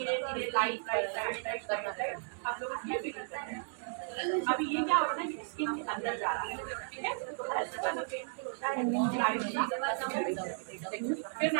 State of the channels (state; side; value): silent; left; digital silence